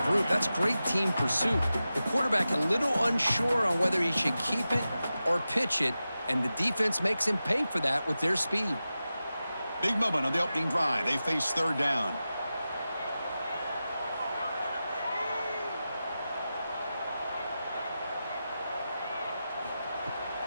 group. That's great team pursuit. The quarterback a little unsure on whether he should keep it or pitch it, and the defense makes him pay for that with their speed. Big moment on the opening drive. They face third down.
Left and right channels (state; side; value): inverted; both; correlation -0.93